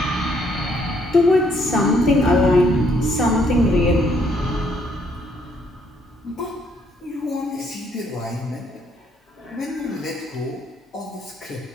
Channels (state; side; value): normal; both; correlation 0.69